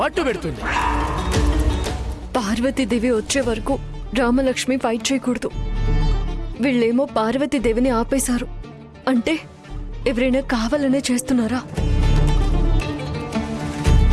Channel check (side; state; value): both; identical; correlation 1.00